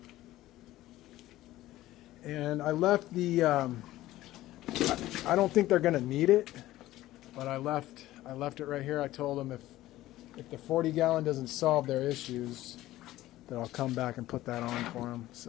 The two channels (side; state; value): right; quieter; 15.7 dB